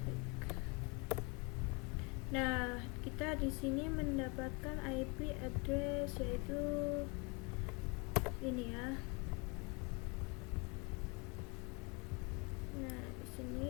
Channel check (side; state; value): right; quieter; 30.4 dB